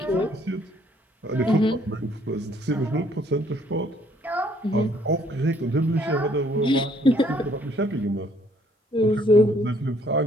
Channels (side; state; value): both; normal; correlation 0.64